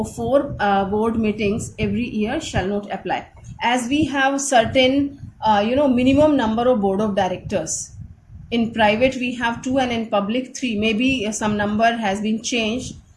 4 board meetings every year shall not apply, as we have certain minimum number of board of directors. In private we have 2 and in public 3. Maybe some number has been changed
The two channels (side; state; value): both; identical; correlation 1.00